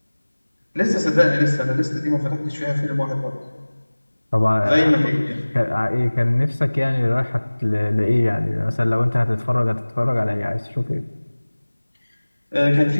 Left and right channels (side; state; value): both; inverted; correlation -1.00